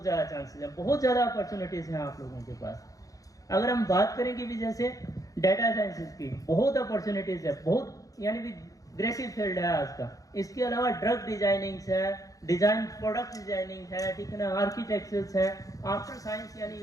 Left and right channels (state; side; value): late; right; 0.17 ms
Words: ज़्यादा चांसेस हैं, बहुत ज़्यादा अपॉर्चुनिटीज़ हैं आप लोगों के पास। अगर हम बात करें कि भी जैसे डाटा साइंसेज की बहुत अपॉर्चुनिटीज़ है, बहुत यानी भी ग्रेसिव फील्ड है आज का। इसके अलावा ड्रग डिजाइनिंग है, डिजाइन प्रोडक्ट डिजाइनिंग है, ठीक है ना, आर्किटेक्चर्स है, आफ्टर साइंस, यानी